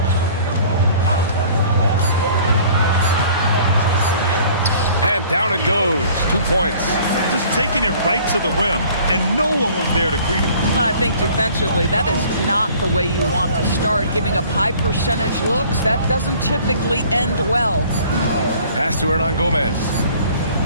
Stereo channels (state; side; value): inverted; both; correlation -0.52